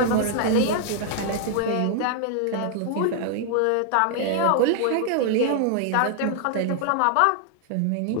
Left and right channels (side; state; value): both; different; correlation 0.00